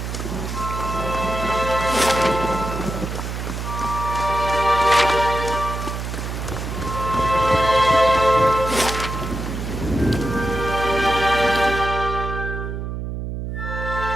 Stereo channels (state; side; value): noise; right; hum, 5 dB below the sound